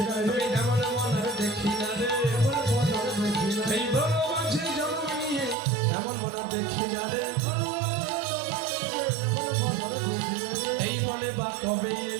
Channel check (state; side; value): drops out; left; at 5.6 s